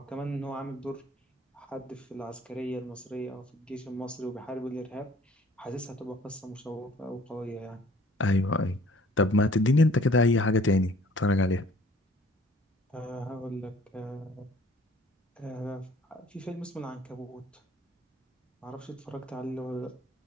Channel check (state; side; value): normal; both; correlation 0.54